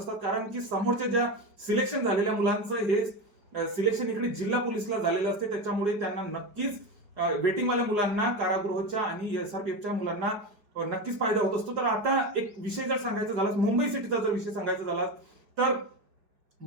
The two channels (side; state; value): left; late; 4.9 ms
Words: कारण की समोरच्या ज्या सिलेक्शन झालेल्या मुलांचं हे सिलेक्शन इकडे जिल्हा पोलीसला झालेलं असते, त्याच्यामुळे त्यांना नक्कीच वेटिंगवाल्या मुलांना कारागृहाच्या आणि एसआरपीएफच्या मुलांना नक्कीच फायदा होत असतो. तर आता एक विषय जर सांगायचा झाला, मुंबई सिटीचा जर विषय सांगायचा झाला, तर